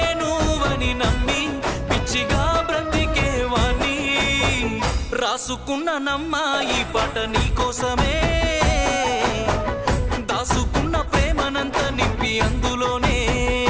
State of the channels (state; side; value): identical; both; correlation 1.00